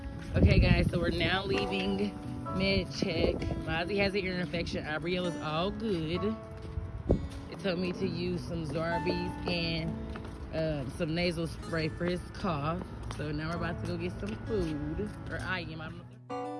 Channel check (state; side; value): identical; both; correlation 1.00